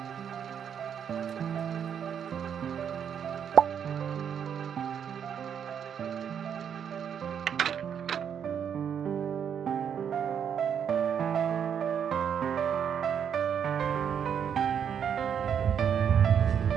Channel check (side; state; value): left; quieter; 8.1 dB